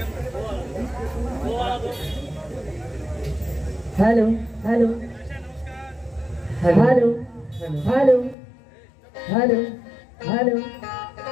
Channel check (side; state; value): right; drops out; at 8.3 s